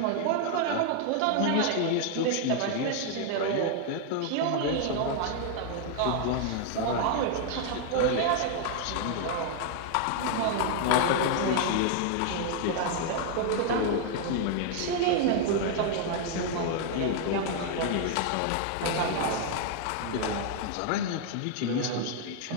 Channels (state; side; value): different; both; correlation 0.00